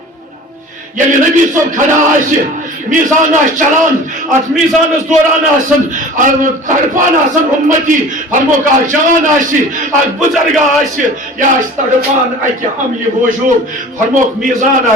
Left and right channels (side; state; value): both; normal; correlation 0.41